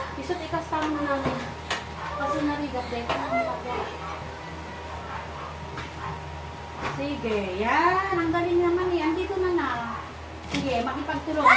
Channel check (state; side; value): identical; both; correlation 1.00